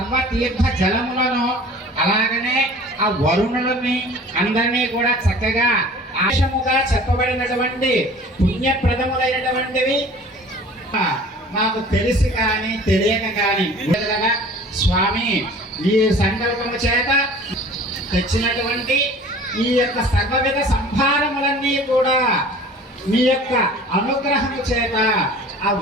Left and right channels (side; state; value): both; normal; correlation 0.46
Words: జలములను, అలాగనే ఆ వరుణులని అందరినీ కూడా చక్కగా ఆశముగా చెప్పబడినటువంటి పుణ్యప్రదములైనటువంటివి మాకు తెలిసి కానీ తెలియక కానీ స్వామి ఈ సంకల్పము చేత తెచ్చినటువంటి ఈ యొక్క సర్వవిధ సంభారములన్నీ కూడా మీ యొక్క అనుగ్రహము చేత, ఆ